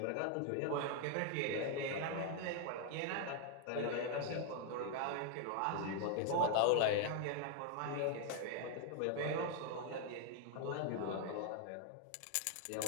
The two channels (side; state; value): both; different; correlation 0.00